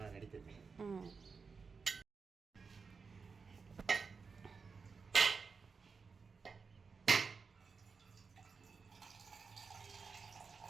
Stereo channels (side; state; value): left; quieter; 5.1 dB